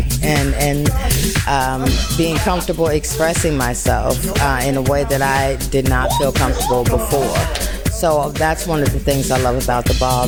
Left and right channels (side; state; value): both; identical; correlation 1.00